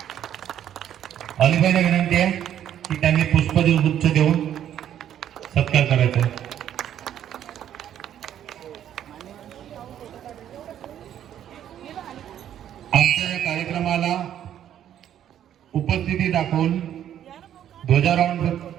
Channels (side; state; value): left; quieter; 10.5 dB